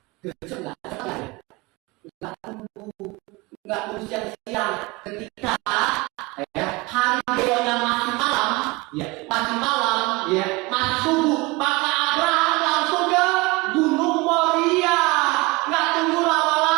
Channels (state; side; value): quieter; left; 24.1 dB